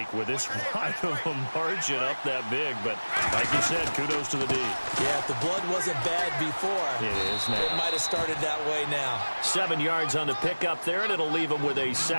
with this wide of a margin up that big. But like you said, kudos to the D. Yeah, if the blood wasn't bad before, it is now. It might have started that way now. 7 yards on the pickup there, and it'll leave them with a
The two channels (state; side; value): inverted; both; correlation -1.00